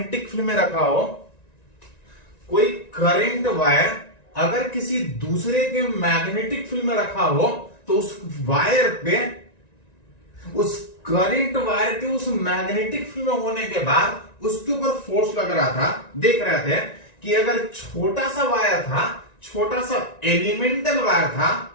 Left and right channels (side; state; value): right; late; 1.9 ms